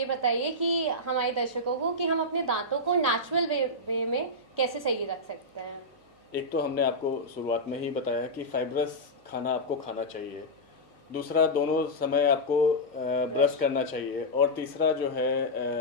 बताइए कि हमारे दर्शकों को कि हम अपने दांतों को नेचुरल वे में कैसे सही रख सकते हैं। एक तो हमने आपको शुरुआत में ही बताया कि फाइब्रस खाना आपको खाना चाहिए। दूसरा, दोनों समय आपको ब्रश करना चाहिए। और तीसरा जो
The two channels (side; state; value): both; normal; correlation -0.08